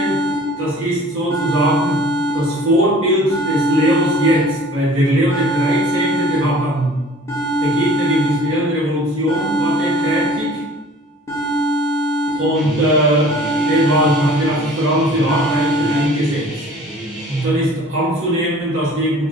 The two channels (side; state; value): both; normal; correlation 0.48